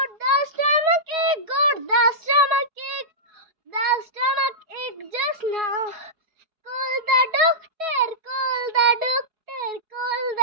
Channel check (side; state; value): left; late; 4.7 ms